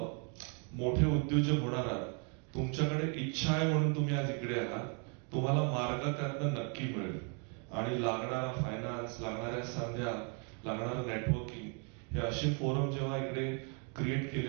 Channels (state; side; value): quieter; left; 38.3 dB